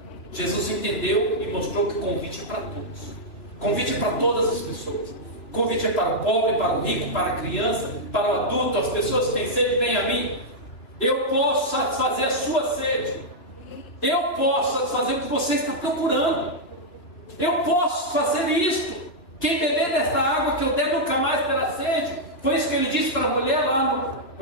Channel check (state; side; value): late; right; 2.7 ms